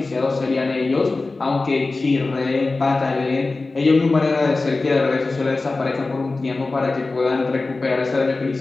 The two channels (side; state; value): right; quieter; 3.5 dB